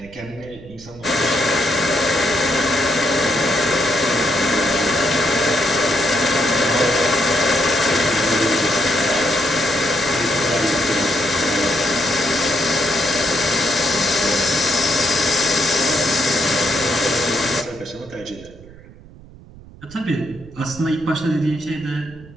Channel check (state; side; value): noise; right; rumble, 20 dB below the sound